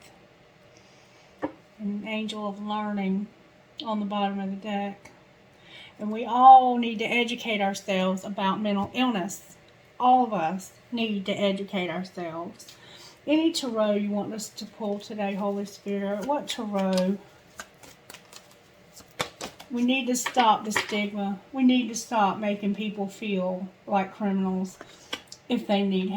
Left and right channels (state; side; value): identical; both; correlation 1.00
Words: An angel of learning on the bottom of the deck. And we all need to educate ourselves about mental illness. All of us need to educate ourselves. Any tarot you want us to pull today, Holy Spirit? What tarot? We need to stop the stigma. We need to stop making people feel like criminals if they need